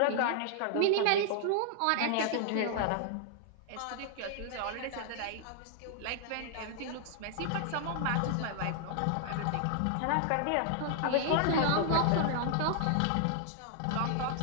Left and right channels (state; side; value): different; both; correlation -0.01